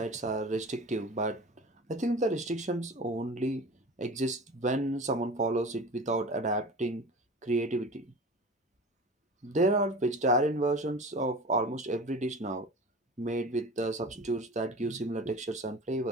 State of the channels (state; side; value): normal; both; correlation 0.36